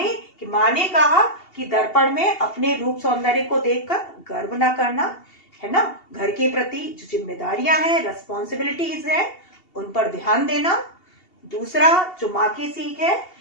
ने कहा कि दर्पण में अपने रूप सौंदर्य को देखकर गर्व ना करना, है ना, घर के प्रति जो जिम्मेदारियां हैं, रेस्पॉन्सिबिलिटीज है, उन पर ध्यान देना। दूसरा जो माँ की सीख है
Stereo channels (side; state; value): right; late; 2.8 ms